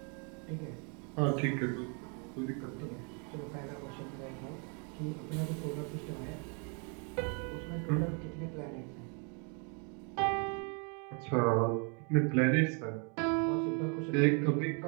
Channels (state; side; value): quieter; left; 37.0 dB